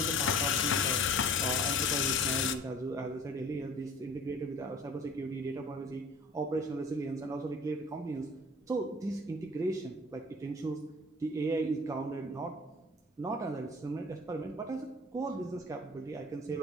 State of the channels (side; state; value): both; normal; correlation 0.45